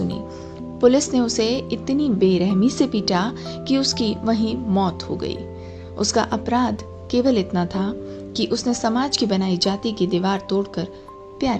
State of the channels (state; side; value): identical; both; correlation 1.00